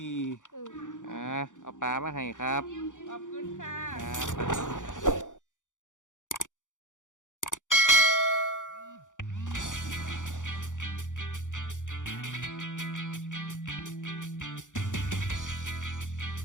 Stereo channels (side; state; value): right; late; 0.86 ms